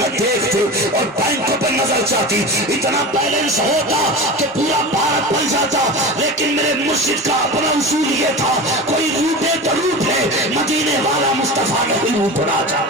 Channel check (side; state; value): both; normal; correlation 0.29